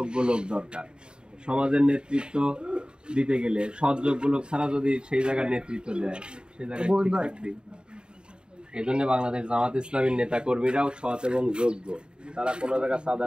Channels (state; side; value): late; left; 0.050 ms